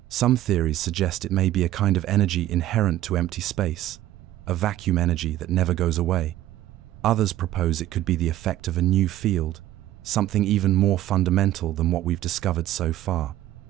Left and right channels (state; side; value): quieter; left; 13.9 dB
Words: Some theories suggest it may be a kind of energy inherent to empty space, a vacuum energy that never goes away. Others propose it could be the effect of a new field, something even more fundamental than what we've discovered so far.